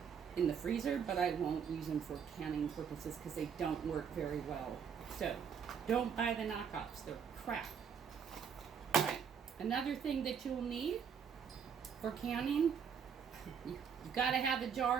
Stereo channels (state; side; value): quieter; left; 7.1 dB